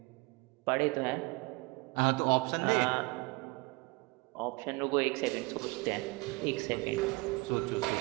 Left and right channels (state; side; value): quieter; left; 25.8 dB